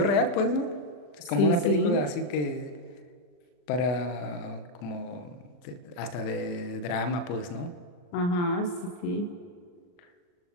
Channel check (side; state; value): right; late; 40 ms